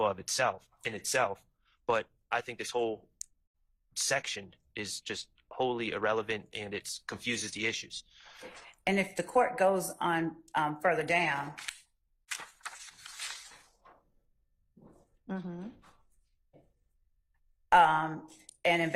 in itself. But I think this whole section is just wholly irrelevant, and it confuses the issues. And if the court goes on further down, and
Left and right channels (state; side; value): identical; both; correlation 1.00